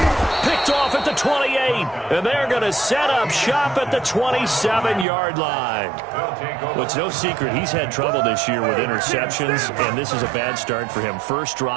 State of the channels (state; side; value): drops out; left; at 5.1 s